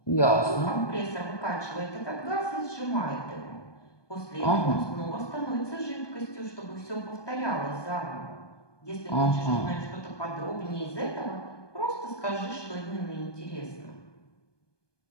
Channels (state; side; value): late; right; 1.2 ms